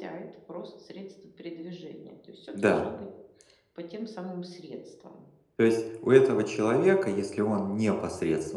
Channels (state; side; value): identical; both; correlation 1.00